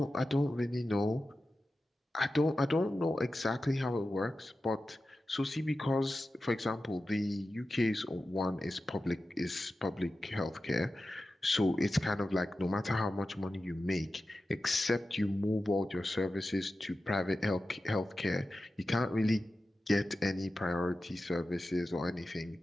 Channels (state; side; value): normal; both; correlation 0.93